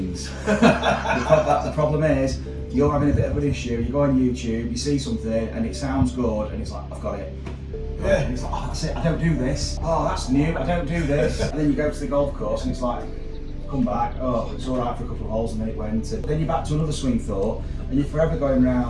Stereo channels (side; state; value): both; identical; correlation 1.00